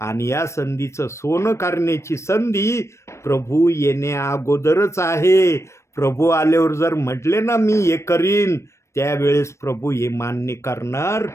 या संधीचं सोनं करण्याची संधी प्रभू येण्या अगोदरच आहे. प्रभू आल्यावर जर म्हटले ना मी हे करीन, त्यावेळेस प्रभू हे मान्य करणार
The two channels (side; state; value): right; late; 0.13 ms